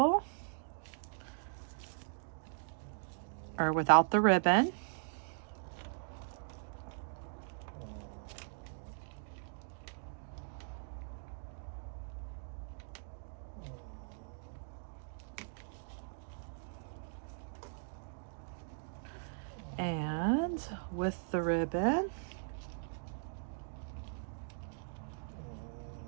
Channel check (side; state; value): left; silent; digital silence